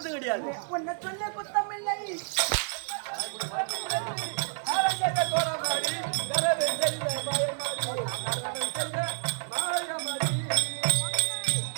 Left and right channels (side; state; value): left; silent; 58 dB below the other